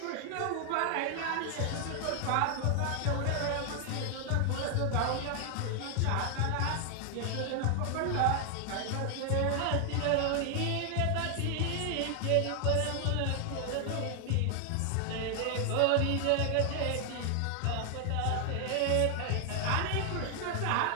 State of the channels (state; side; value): different; both; correlation 0.00